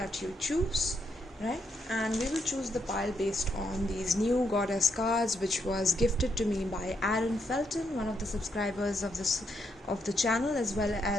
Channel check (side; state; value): both; normal; correlation 0.78